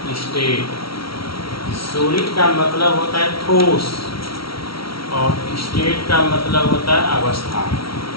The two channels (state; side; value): late; right; 0.75 ms